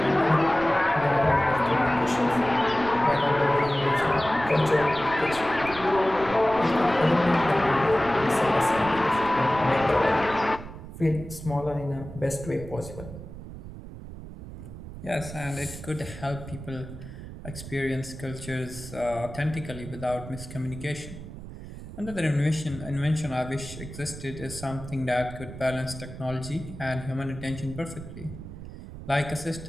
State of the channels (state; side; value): noise; right; rumble, 12 dB below the sound